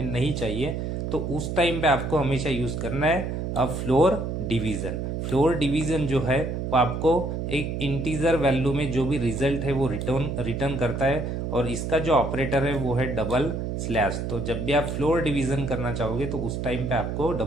नहीं चाहिए, तो उस टाइम पे आपको हमेशा यूज करना है फ्लोर डिवीजन। फ्लोर डिवीजन जो है वो आपको एक इंटीजर वैल्यू में जो भी रिजल्ट है वो रिटर्न करता है, और इसका जो ऑपरेटर है वो है डबल स्लैश। तो जब भी आप फ्लोर डिवीजन करना चाहोगे तो उस टाइम पे आपको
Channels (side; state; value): right; noise; hum, 3 dB below the sound